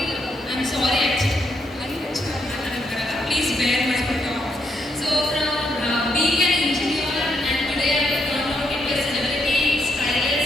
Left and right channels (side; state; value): both; normal; correlation 0.77